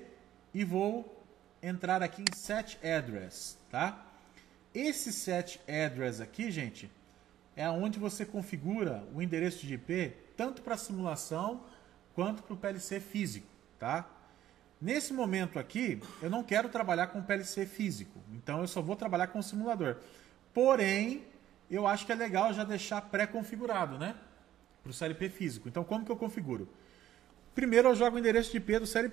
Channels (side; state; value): left; quieter; 12.5 dB